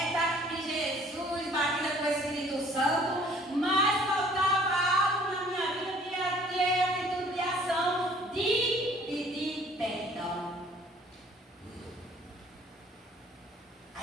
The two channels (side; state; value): both; normal; correlation 0.56